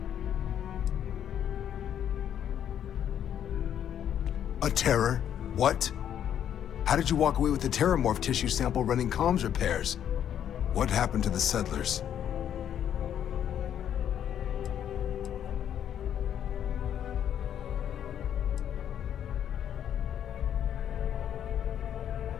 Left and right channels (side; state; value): right; quieter; 9.7 dB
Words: A terror? What? How did you walk away with the terramorph tissue sample running comms repairs? What happened to the settlers?